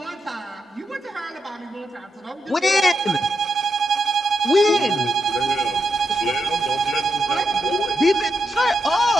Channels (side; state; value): both; normal; correlation 0.84